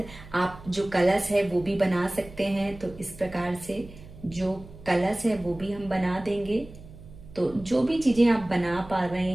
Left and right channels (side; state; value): right; noise; hum, 18 dB below the sound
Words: आप जो कलश है वो भी बना सकते हैं। तो इस प्रकार से जो कलश है वो भी हम बना देंगे। तो जो भी चीजें आप बना पा रहे